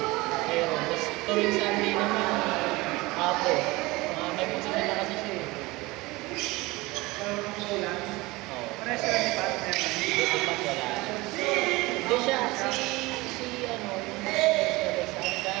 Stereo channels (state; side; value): quieter; left; 21.8 dB